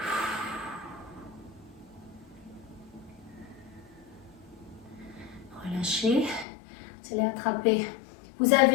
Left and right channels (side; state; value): right; drops out; at 6.5 s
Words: relâchez. Vous allez attraper. Vous